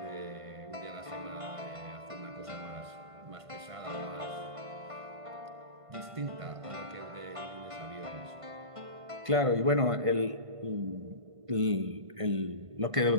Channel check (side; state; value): left; late; 1.5 ms